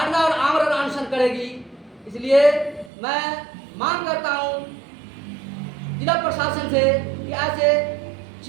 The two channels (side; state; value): left; drops out; at 2.9 s